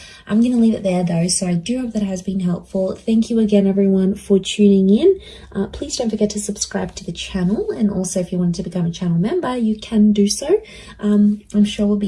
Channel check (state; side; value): identical; both; correlation 1.00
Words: I'm going to leave it there though, so I do hope that has been helpful. Thank you again, everyone, for tuning in. Please don't forget to subscribe to the channel, and also if you wanted to become a channel member, you can do so. I'm sure we'll